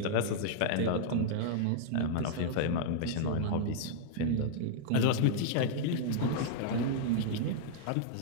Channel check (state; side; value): different; both; correlation -0.02